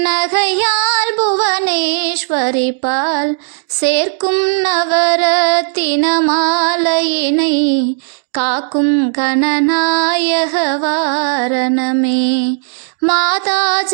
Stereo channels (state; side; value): silent; left; digital silence